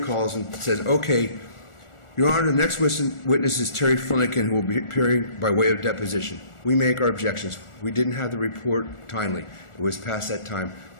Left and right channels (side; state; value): right; late; 1.4 ms